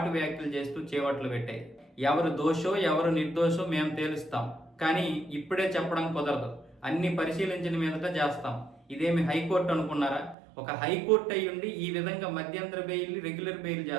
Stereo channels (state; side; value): drops out; left; at 10.4 s